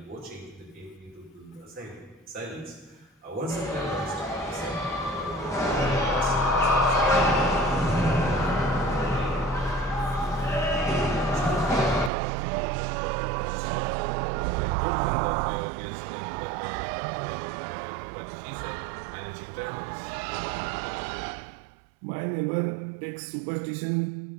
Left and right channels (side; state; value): left; drops out; at 12.1 s